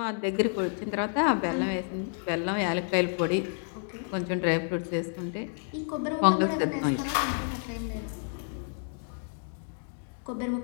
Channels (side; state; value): right; silent; 58 dB below the other